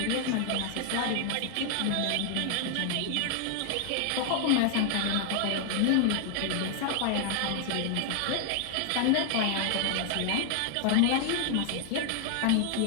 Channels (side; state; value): both; different; correlation 0.00